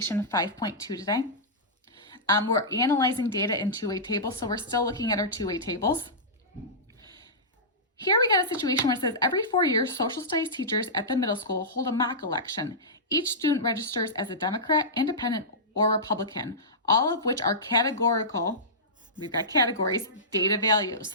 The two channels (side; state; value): both; normal; correlation -0.16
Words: 5.2 today. We're analyzing data in two-way tables, so we're still looking at our two-way tables. Here we got a situation where it says every 4 years, social studies teachers at the middle school hold a mock election. Each student registers as a Democrat, Independent, or Republican, all of which are categorical. We've got categories, data values.